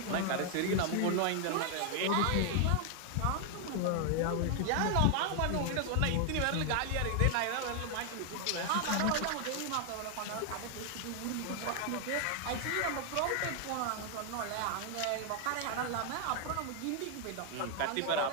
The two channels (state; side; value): different; both; correlation 0.00